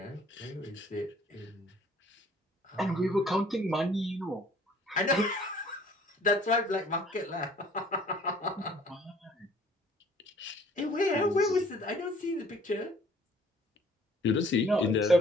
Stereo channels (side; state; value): both; normal; correlation 0.56